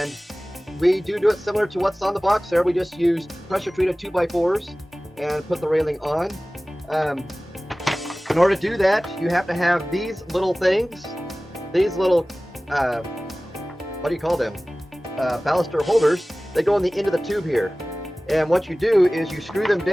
we do it similar to what's on the box there. We just use pressure treated 2x4s and put the railing on. In order to do that, you have to have these little things, these little, what do you call them? Baluster holders. They go on the end of the tube here. And what you do is you screw them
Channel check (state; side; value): normal; both; correlation 0.98